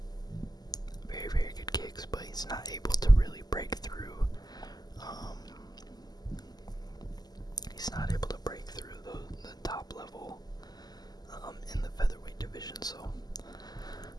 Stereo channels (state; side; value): late; right; 0.20 ms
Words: very, very good kicks, but he's not able to really break through. He's not able to break through the top level in the featherweight division. So